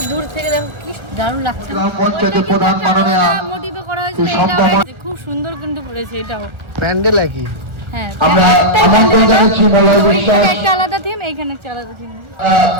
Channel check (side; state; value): left; late; 1.3 ms